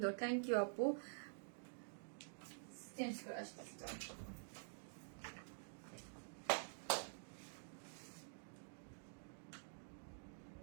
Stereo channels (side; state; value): left; silent; digital silence